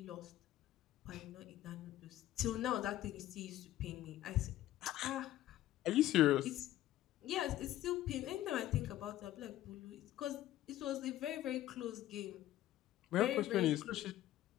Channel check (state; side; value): quieter; right; 13.9 dB